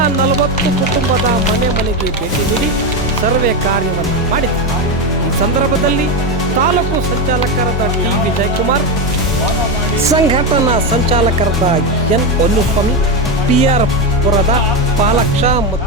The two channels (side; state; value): both; normal; correlation 0.12